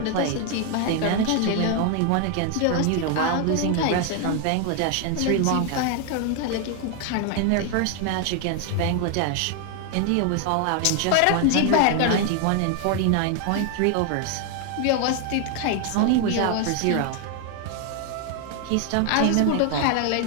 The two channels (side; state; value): both; different; correlation 0.01